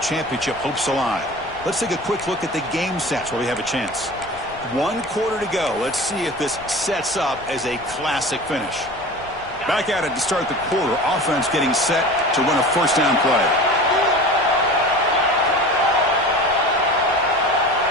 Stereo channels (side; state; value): left; noise; rumble, 21 dB below the sound